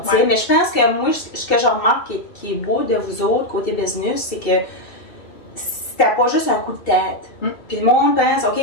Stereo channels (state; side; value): late; right; 2.7 ms